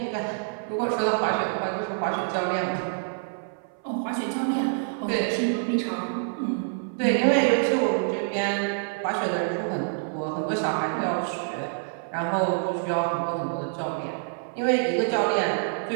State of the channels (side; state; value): left; silent; 57 dB below the other